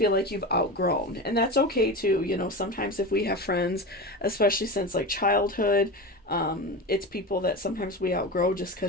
like you've outgrown, and that's okay too. Sometimes if we have friends, especially since like childhood, it's people that sometimes we outgrow just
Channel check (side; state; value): both; normal; correlation 0.25